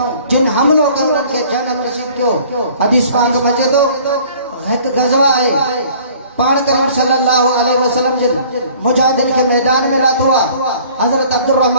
जिन हमिलो कयो उन्हनि खे जनम रसीद कयो। हदीस पाक में अचे थो हिकु ग़ज़वा आहे पाण करीम सल्लल्लाहु अलैहि वसल्लम जिन मुजाहिदनि खे मैदान में लाथो आहे। हज़रत अब्दुर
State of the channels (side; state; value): both; inverted; correlation -0.52